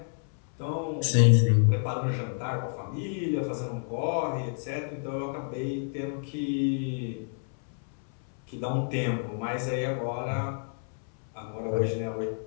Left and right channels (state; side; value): silent; right; 58 dB below the other